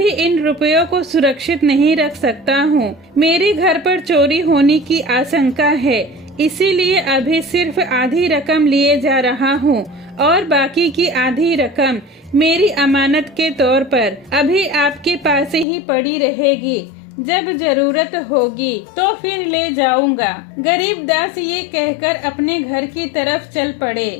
इन रुपयों को सुरक्षित नहीं रख सकता हूँ। मेरे घर पर चोरी होने की आशंका है, इसीलिए अभी सिर्फ आधी रकम लिए जा रहा हूँ और बाकी की आधी रकम मेरी अमानत के तौर पर अभी आपके पास ही पड़ी रहेगी। जब जरूरत होगी तो फिर ले जाऊंगा। गरीब दास ये कहकर अपने घर की तरफ चल पड़े।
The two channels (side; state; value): right; drops out; at 15.7 s